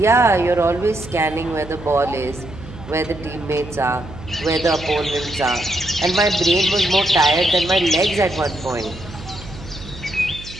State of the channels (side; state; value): right; noise; hum, 15 dB below the sound